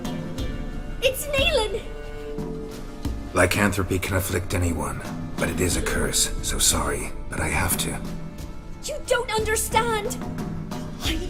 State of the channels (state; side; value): identical; both; correlation 1.00